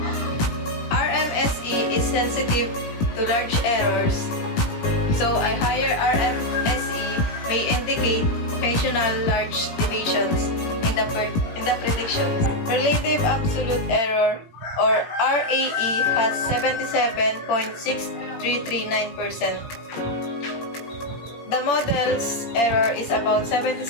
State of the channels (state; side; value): late; right; 18 ms